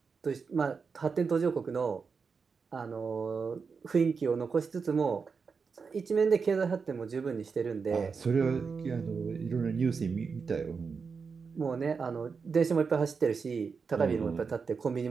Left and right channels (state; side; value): quieter; left; 5.3 dB